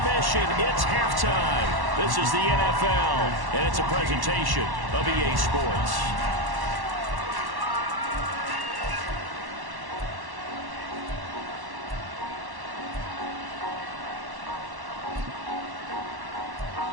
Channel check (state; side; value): late; left; 1.1 ms